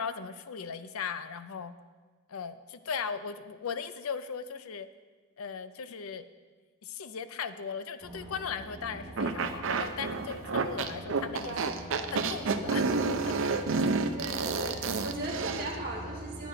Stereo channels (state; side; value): normal; both; correlation -0.01